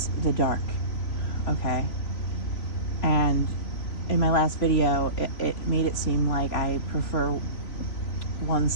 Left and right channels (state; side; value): late; right; 3.5 ms